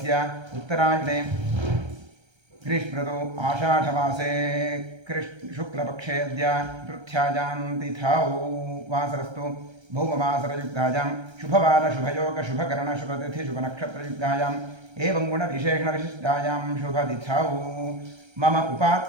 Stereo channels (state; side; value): late; left; 1.3 ms